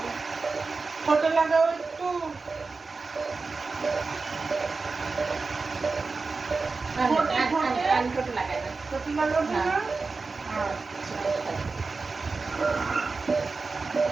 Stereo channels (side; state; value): left; quieter; 4.1 dB